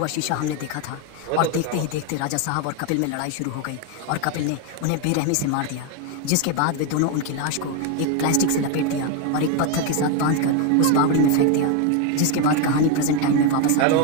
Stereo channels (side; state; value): both; different; correlation 0.01